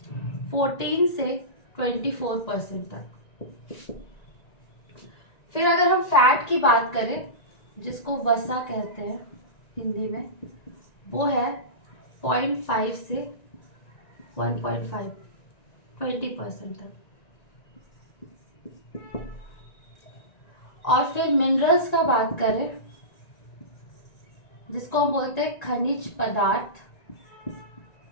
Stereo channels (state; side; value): late; right; 1.9 ms